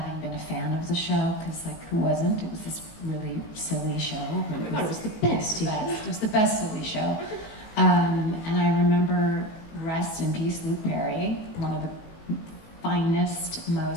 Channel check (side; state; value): right; late; 18 ms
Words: been a fan of the show, because like who wasn't? It was this really silly show. Oh my God, it was the best. It was the best silly show. And I remember, rest in peace, Luke Perry, one of the finest,